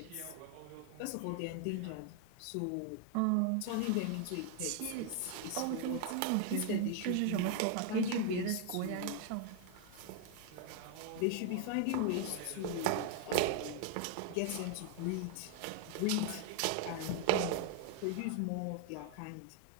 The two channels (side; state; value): both; different; correlation 0.00